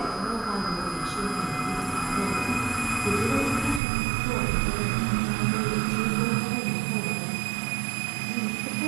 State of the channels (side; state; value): left; drops out; at 3.8 s